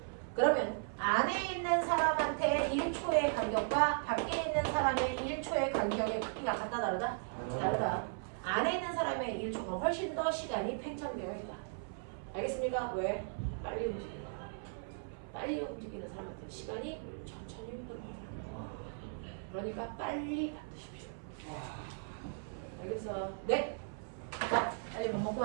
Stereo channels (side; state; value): left; silent; 53 dB below the other